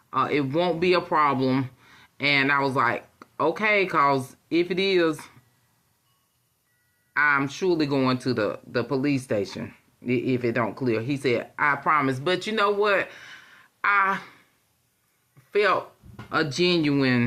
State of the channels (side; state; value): both; identical; correlation 1.00